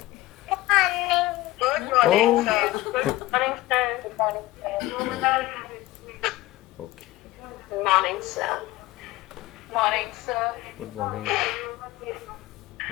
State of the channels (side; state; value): right; quieter; 17.9 dB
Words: Oh, okay. Morning, sir. Morning, sir. Good morning.